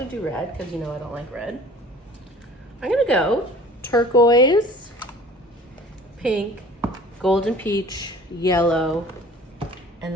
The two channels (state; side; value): normal; both; correlation 0.47